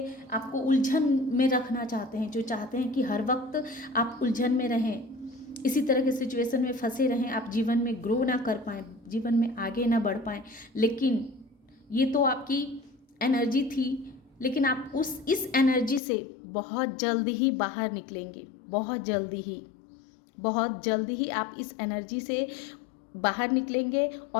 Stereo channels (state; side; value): drops out; right; at 16.0 s